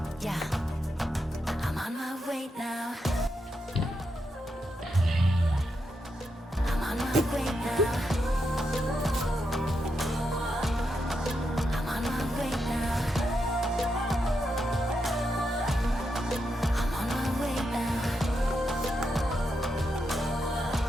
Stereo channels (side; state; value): both; normal; correlation 0.84